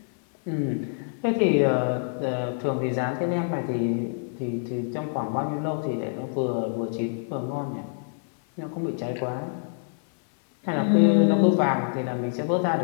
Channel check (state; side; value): silent; right; 61 dB below the other